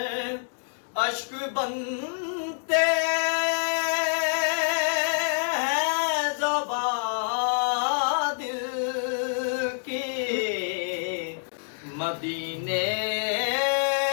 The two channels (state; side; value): silent; right; digital silence